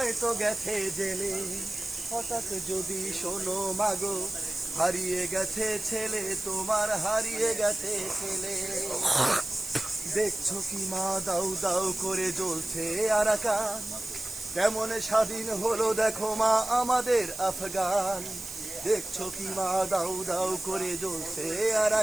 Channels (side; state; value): right; noise; hiss, 10 dB below the sound